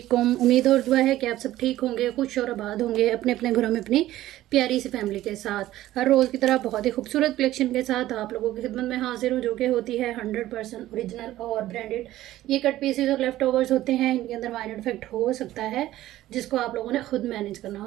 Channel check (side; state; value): left; quieter; 14.8 dB